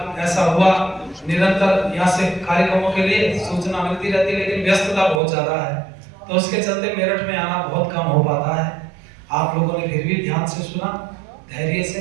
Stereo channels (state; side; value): drops out; left; at 5.2 s